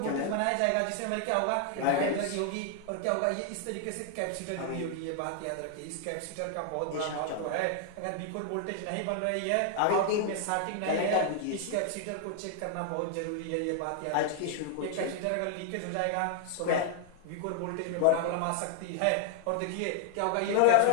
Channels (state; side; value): different; both; correlation 0.00